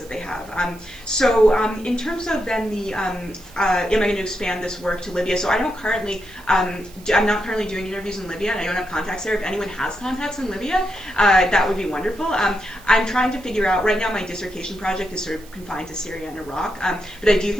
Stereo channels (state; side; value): noise; right; hiss, 23 dB below the sound